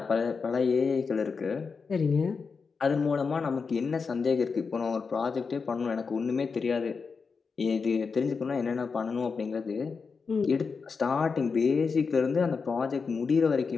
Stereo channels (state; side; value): quieter; right; 5.1 dB